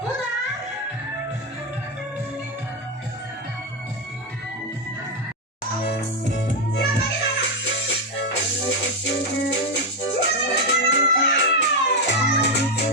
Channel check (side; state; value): both; normal; correlation 0.06